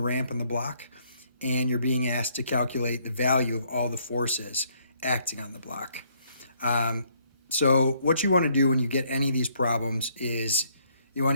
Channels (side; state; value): both; inverted; correlation -0.68